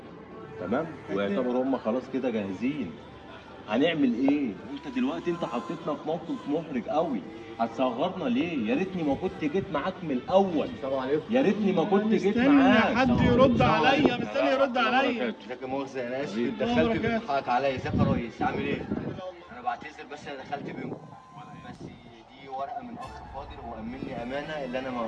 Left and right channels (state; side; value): identical; both; correlation 1.00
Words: تمام؟ ويعتبروا هم خلاص كده جاهزين. هنعمل ايه؟ انت دلوقتي انت حطيتنا في موقف محرج قوي. هتصغرنا ليه؟ يا ريتني ما كنت جيت معاك من الاول. السلام عليكم. يا ريتني ما كنت جيت مستني معاك. حد يرد عليا، مستني يرد عليا. ازيك يا مؤاخذة انا اسف حبيبي. اتدخلت بركات. بتضحك عليا. ازيك يا ريس عامل ايه؟ انا بعتذر بس انا دخلت بينكم. بس دي ورقه من اخ فاضل هو امني امانه اللي انا ما